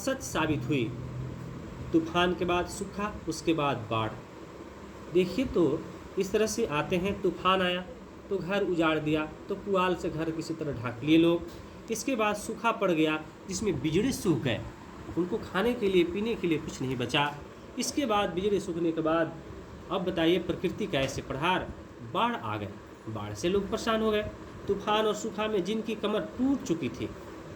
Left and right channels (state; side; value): identical; both; correlation 1.00